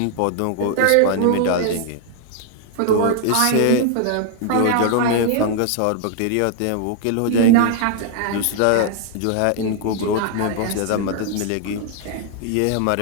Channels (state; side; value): different; both; correlation 0.00